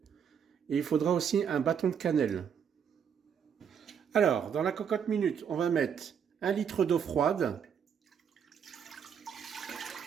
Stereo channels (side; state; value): left; quieter; 7.6 dB